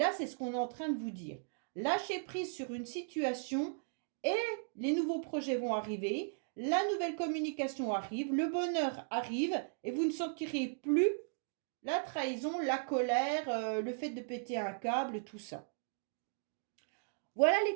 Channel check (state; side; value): silent; left; digital silence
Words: c'est ce qu'on est en train de vous dire. Lâchez prise sur une situation et les nouveaux projets vont arriver, la nouvelle communication arrive, le bonheur arrive et vous ne sentirez plus la trahison, la colère, le fait de péter un câble, tout ça. Voilà les